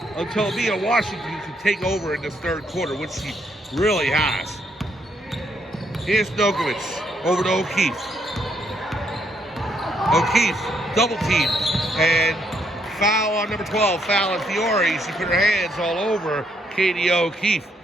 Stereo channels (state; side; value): normal; both; correlation 0.73